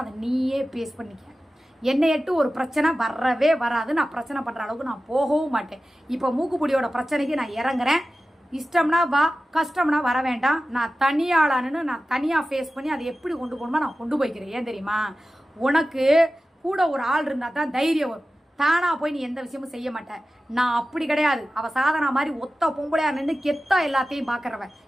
அதை நீயே பேஸ் பண்ணிக்க. என்னை எட்டு ஒரு பிரச்சனை வரவே வராது. நான் பிரச்சனை பண்ணுற அளவுக்கு நான் போகவும் மாட்டேன். இப்போ மூக்குப்பொடியோட பிரச்சனைக்கு நான் இறங்குறேன். இஷ்டம்னா வா, கஷ்டம்னா வர வேண்டாம். நான் தனியாளானு நான் தனியாக ஃபேஸ் பண்ணி அதை எப்படி கொண்டு போகணுமோ நான் கொண்டு போய்க்கிறேன். ஏன் தெரியுமா, உனக்கு கூட ஒரு ஆள் இருந்தால் தான் தைரியம் வரும். தானா போய் நீ எந்த விஷயமும் செய்ய மாட்டேன். நான் அப்படி கிடையாது. அவள் சாதனா மாதிரி ஒத்த பொம்பளையா நின்று கெத்தா எல்லாத்தையும் பார்க்குறவன்.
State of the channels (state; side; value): normal; both; correlation 0.95